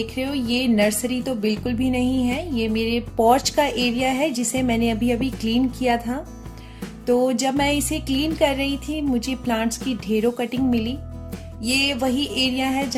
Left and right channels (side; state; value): both; identical; correlation 1.00